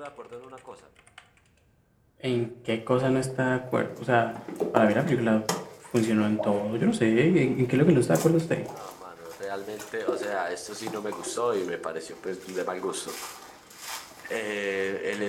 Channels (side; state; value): both; identical; correlation 1.00